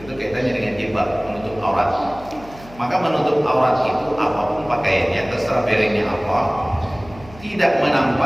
kaitannya dengan jilbab, menutup aurat. Maka menutup aurat itu apapun pakaiannya, terserah berennya apa, tidak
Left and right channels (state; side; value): noise; left; hum, 20 dB below the sound